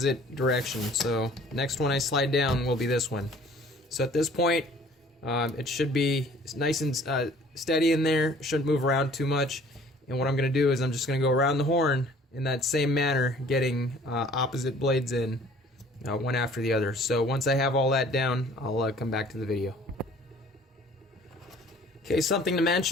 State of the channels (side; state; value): both; normal; correlation 0.52